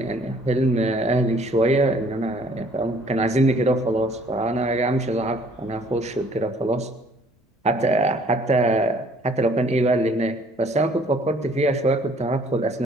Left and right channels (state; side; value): normal; both; correlation 0.59